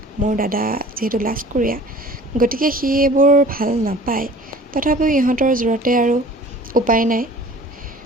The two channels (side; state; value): both; normal; correlation 0.46